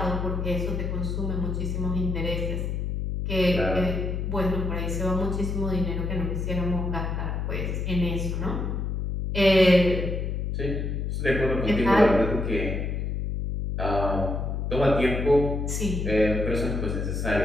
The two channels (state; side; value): noise; left; hum, 2 dB below the sound